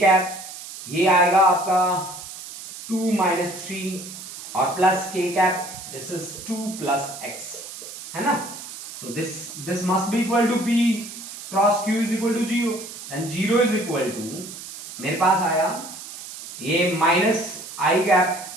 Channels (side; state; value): right; noise; hiss, 12 dB below the sound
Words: ये आएगा आपका 2 माइनस 3 और plus K cap this is 2 plus X, है ना। तो this must be equal to P cross Q is equal to 0 and 0 is equal to मेरे पास आया ये minus I